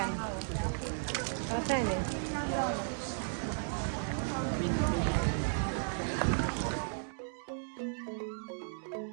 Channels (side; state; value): left; silent; digital silence